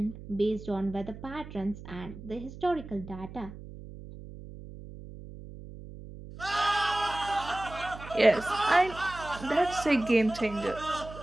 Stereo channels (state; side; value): noise; right; hum, 14 dB below the sound